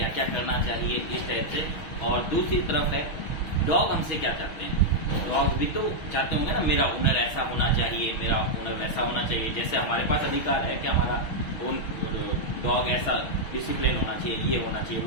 क्या करना चाहिए, इस टाइप से। और दूसरी तरफ है डॉग हमसे क्या चाहते हैं। डॉग भी तो चाहते होंगे ना, मेरा ओनर ऐसा होना चाहिए, मेरा ओनर वैसा होना चाहिए। जैसे हमारे पास अधिकार है कि हमारा डॉग ऐसा डिसिप्लिन होना चाहिए, ये होना चाहिए,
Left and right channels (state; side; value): late; right; 6.2 ms